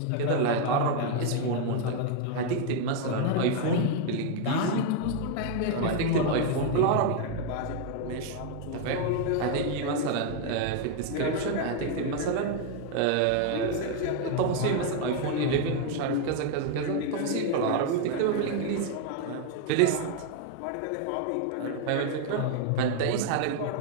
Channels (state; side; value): different; both; correlation 0.00